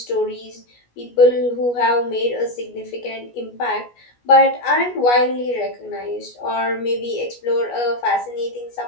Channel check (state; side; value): late; right; 17 ms